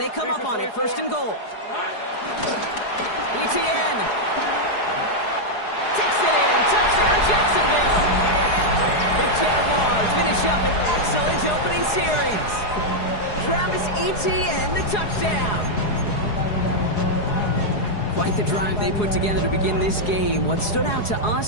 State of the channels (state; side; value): late; right; 4.8 ms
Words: come up on it. 1st and goal. Etienne. Takes it in. Touchdown, Jacksonville. The Jaguars finish up an excellent opening series. Travis Etienne, the touchdown. Quite the drive they put together to begin this game. What stood out to